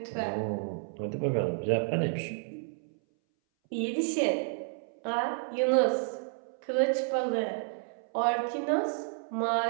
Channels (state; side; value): silent; left; 57 dB below the other